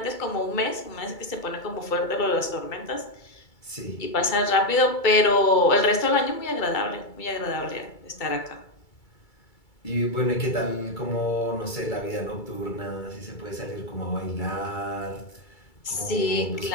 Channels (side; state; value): right; late; 2.3 ms